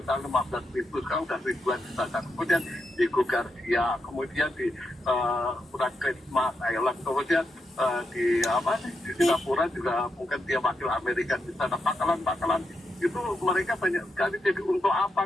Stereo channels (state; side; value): normal; both; correlation 0.84